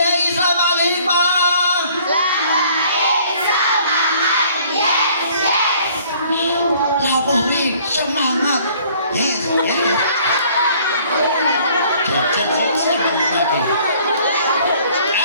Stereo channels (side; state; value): both; inverted; correlation -0.57